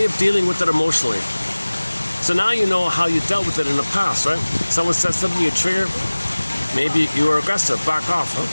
of dealing with it emotionally. So now you know how you dealt with it in the past, right? Someone said something, you trigger. Maybe you were aggressive, back off,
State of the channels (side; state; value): both; inverted; correlation -1.00